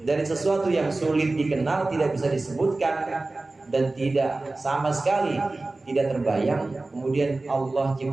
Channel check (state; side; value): quieter; left; 3.2 dB